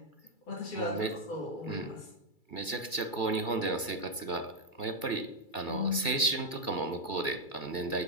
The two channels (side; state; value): right; late; 2.3 ms